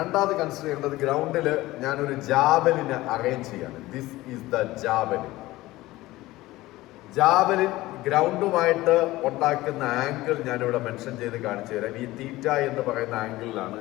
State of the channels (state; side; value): quieter; right; 18.0 dB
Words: കൺസിഡർ ചെയ്യേണ്ടത് ഗ്രൗണ്ടിൽ ഞാനൊരു ജാവലിനെ അറേഞ്ച് ചെയ്യാണ്. This is the javelin. Javelin ഗ്രൗണ്ടുമായിട്ട് ഉണ്ടാക്കുന്ന ആംഗിൾ ഞാനിവിടെ മെൻഷൻ ചെയ്ത് കാണിച്ചു തരാം. ഈ തീറ്റ എന്ന് പറയുന്ന ആംഗിളിലാണ്